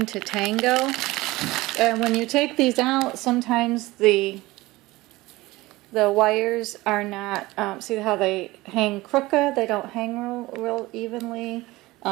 to Tango, and when you take these out, sometimes the wires are not, see how they hang crooked? They don't hang real evenly,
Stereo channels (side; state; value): left; quieter; 19.8 dB